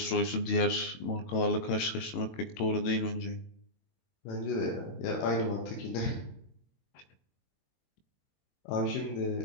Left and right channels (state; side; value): late; right; 22 ms